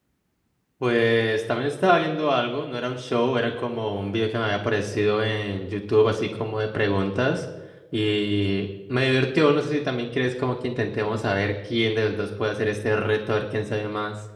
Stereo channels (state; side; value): identical; both; correlation 1.00